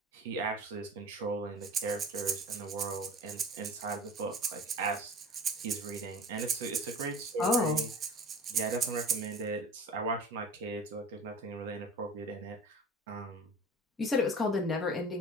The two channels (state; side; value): normal; both; correlation 0.39